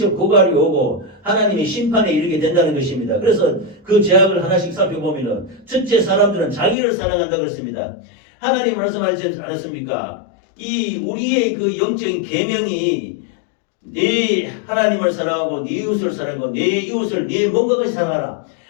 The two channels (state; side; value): drops out; right; at 6.8 s